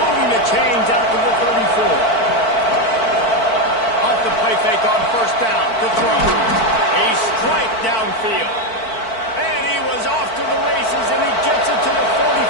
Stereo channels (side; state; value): right; late; 4.5 ms